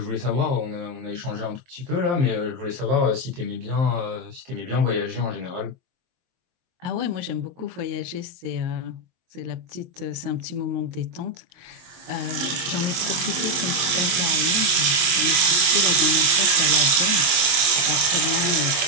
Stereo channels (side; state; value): left; late; 23 ms